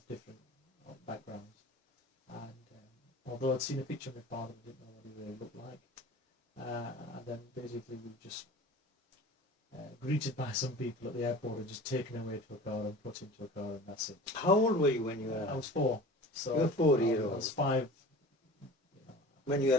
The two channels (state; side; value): normal; both; correlation 0.39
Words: different backgrounds. And although I'd seen a picture of my father, I didn't know what he really looked like. And then basically we were just greeted by some people at the airport and just taken away to a car and put into a car, and that's it. How old were you when you arrived? I was 4. So you were 4 years old. I was 5. When you